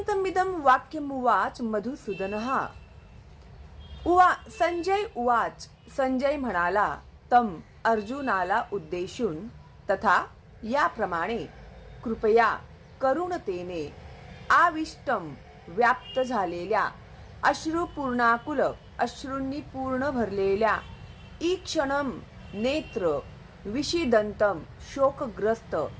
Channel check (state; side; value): identical; both; correlation 1.00